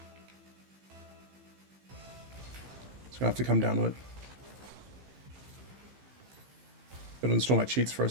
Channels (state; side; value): late; left; 15 ms